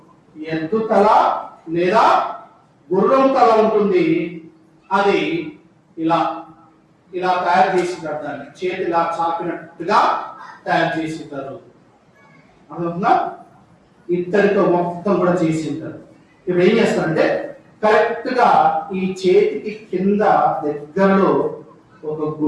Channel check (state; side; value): identical; both; correlation 1.00